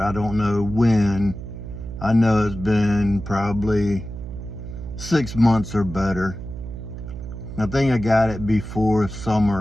don't know when. I know it's been probably 6 months or better. I think I got it before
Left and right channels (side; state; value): right; noise; hum, 9 dB below the sound